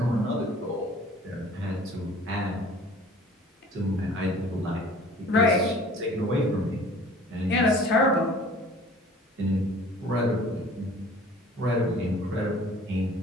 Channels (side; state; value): both; normal; correlation 0.48